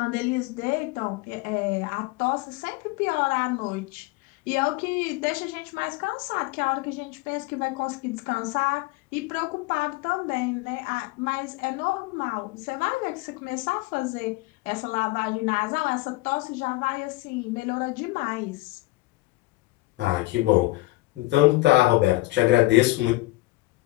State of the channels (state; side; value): quieter; right; 20.0 dB